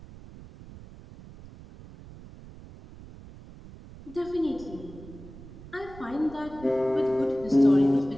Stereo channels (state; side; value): noise; right; rumble, 17 dB below the sound